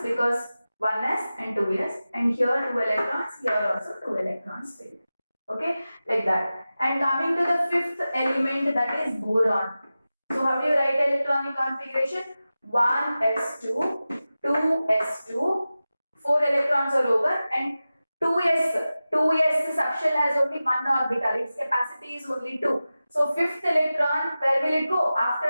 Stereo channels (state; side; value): inverted; both; correlation -0.95